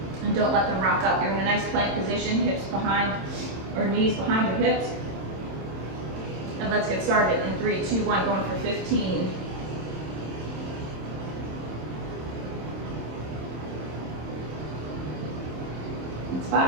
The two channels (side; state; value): left; late; 27 ms